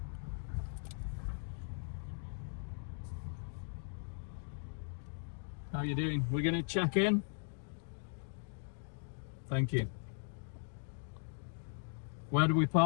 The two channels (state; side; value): silent; right; digital silence